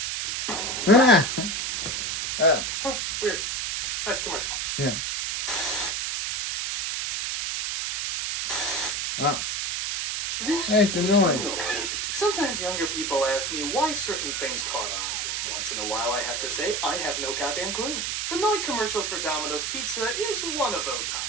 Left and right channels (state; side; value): noise; right; hiss, 1 dB below the sound